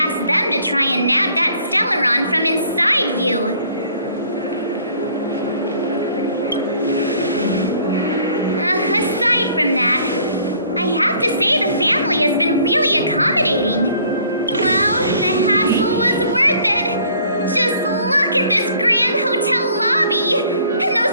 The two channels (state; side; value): inverted; both; correlation -0.57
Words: them to try and nab that Stellaron from inside you. Aside from that, I have to say the family has been really accommodating. Well, the hassle was worth it. Just look at this grand hotel lobby. And